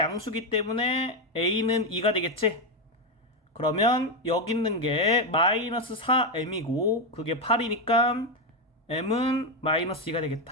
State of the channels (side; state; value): both; normal; correlation 0.07